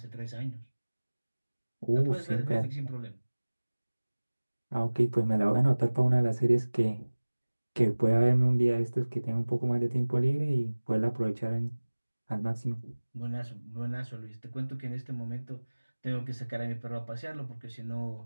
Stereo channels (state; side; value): inverted; both; correlation -1.00